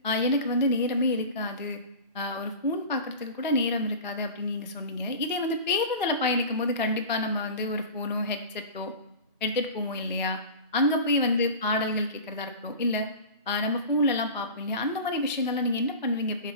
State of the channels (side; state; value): both; inverted; correlation -0.34